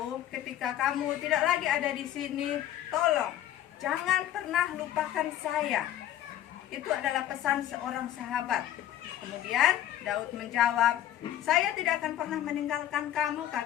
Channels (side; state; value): right; quieter; 12.0 dB